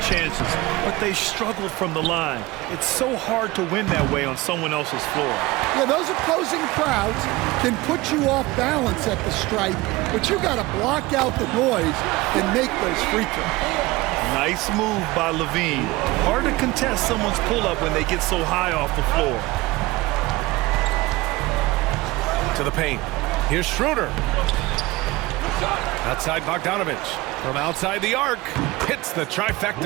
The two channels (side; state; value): left; quieter; 20.4 dB